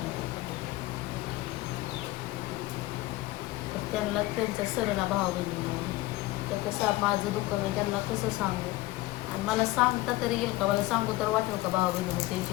तर त्यांना त्यांचं सरळ भावा बहिणी तर कसं माझं दुःख मी त्यांना कसं सांगू, आणि मला सांगता तरी येईल का, मला सांगू तर वाटेल का भाऊ बहिणी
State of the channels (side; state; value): right; quieter; 18.6 dB